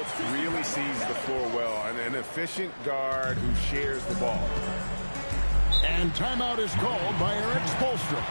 really sees the floor well. An efficient guard who shares the ball. And timeout is called by Eric Spoelstra.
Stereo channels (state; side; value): inverted; both; correlation -1.00